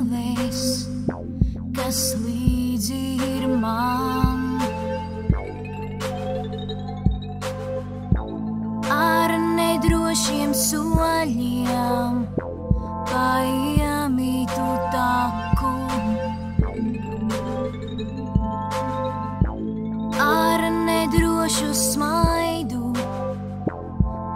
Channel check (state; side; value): identical; both; correlation 1.00